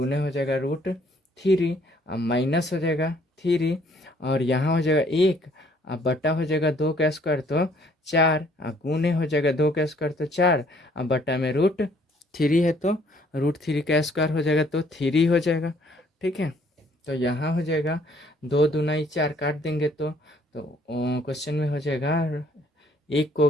हो जाएगा √3 और माइनस हो जाएगा 3 और यहाँ हो जाएगा 1 और बटा हो जाएगा 2 का स्क्वायर तो 4 और गुने हो जाएगा 2 का स्क्वायर तो 4 और बटा में √3 है, तो √3 का स्क्वायर हो जाएगा तो 3 हो जाएगा, ठीक है। तो यहाँ हो जाएगा 2 दूनाई 4 काट देंगे तो क्वेश्चन में हो जाएगा 1 को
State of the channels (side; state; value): both; normal; correlation 0.62